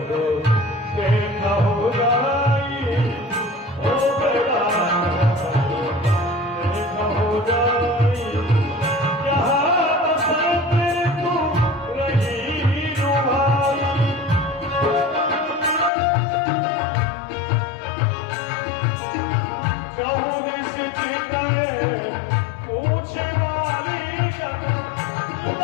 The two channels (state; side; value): drops out; right; at 15.9 s